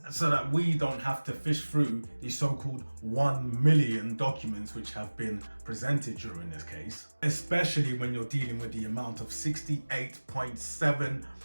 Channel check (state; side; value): inverted; both; correlation -1.00